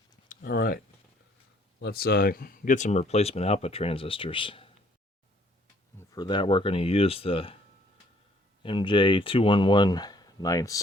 All right, let's get some replacement output transistors. For that, we're going to use the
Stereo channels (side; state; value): both; normal; correlation 0.62